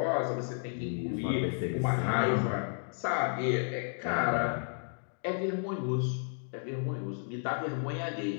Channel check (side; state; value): right; silent; digital silence